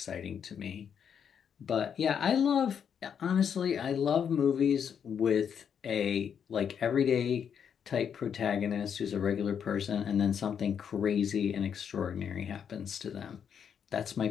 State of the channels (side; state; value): right; quieter; 7.7 dB